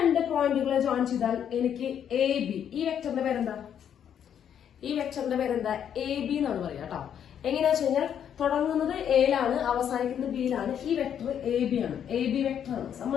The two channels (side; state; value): right; quieter; 9.0 dB